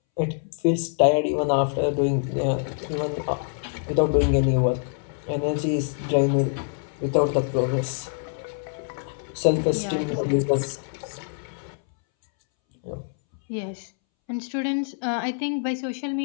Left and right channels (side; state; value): right; silent; 62 dB below the other